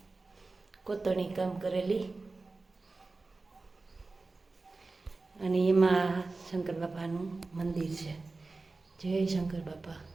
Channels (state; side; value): quieter; left; 3.6 dB